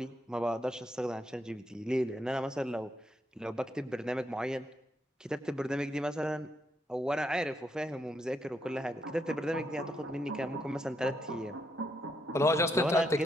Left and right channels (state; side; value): normal; both; correlation 0.78